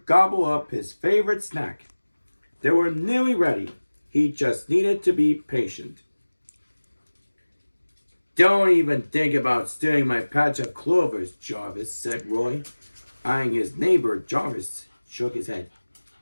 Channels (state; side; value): inverted; both; correlation -1.00